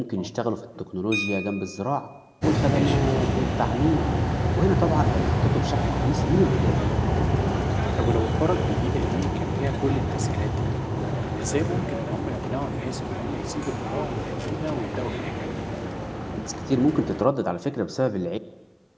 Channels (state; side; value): identical; both; correlation 1.00